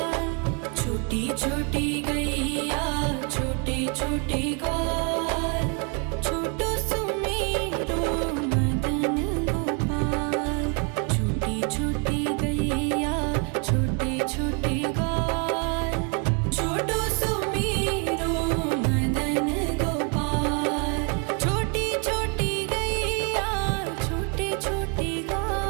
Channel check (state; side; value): quieter; left; 34.5 dB